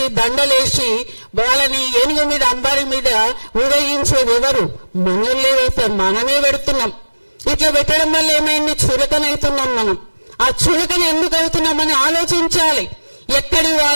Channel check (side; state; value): both; inverted; correlation -1.00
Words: దండలేసి వాళ్ళని ఏనుగు మీద అంబారి మీద ఊరేగించేది ఎవరు? మనల్ని వేస్తాం, మనమే పెడుతున్నాం. ఇట్లా పెట్టడం వల్ల ఏమైంది? చులకనవుతున్నాం మనం. ఆ చులకన ఎందుకు అవుతున్నామని ఆలోచించాలి. ఎక్కడి